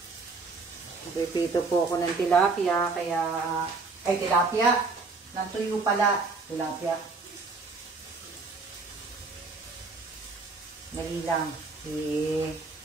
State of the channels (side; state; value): left; quieter; 4.0 dB